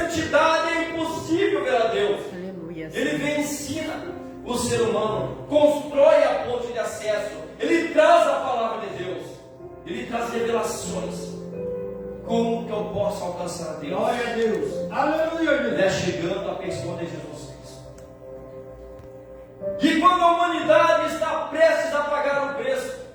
é impossível ver a Deus. Ele vem e ensina o ser humano, constrói a ponte de acesso, ele traz a palavra de Deus, ele traz revelações. Como que eu posso alcançar a Deus? Glória a Deus. Aleluia, Deus. É chegando a pessoa de Jesus Cristo. E quando a humanidade está prestes a pagar o preço,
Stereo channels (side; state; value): both; identical; correlation 1.00